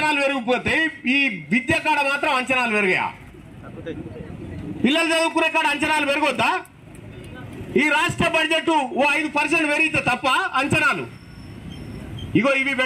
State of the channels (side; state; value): both; identical; correlation 1.00